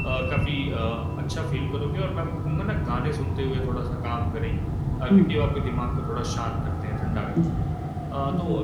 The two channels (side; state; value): both; identical; correlation 1.00